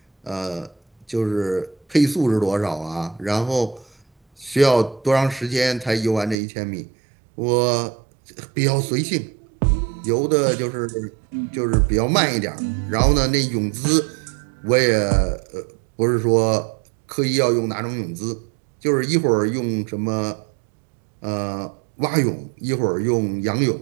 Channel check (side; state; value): left; drops out; at 6.4 s